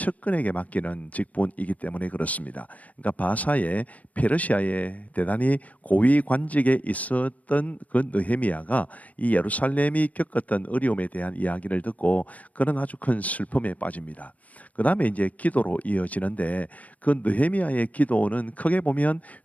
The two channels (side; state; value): right; late; 0.072 ms